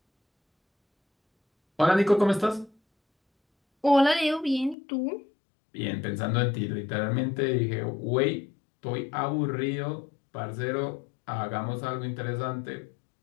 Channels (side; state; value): right; drops out; at 4.8 s